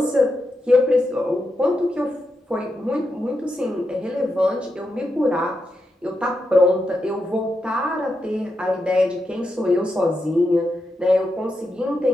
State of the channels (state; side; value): normal; both; correlation 0.86